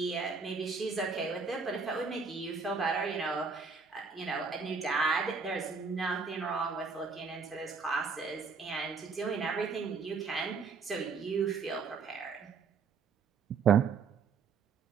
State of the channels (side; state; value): left; quieter; 5.1 dB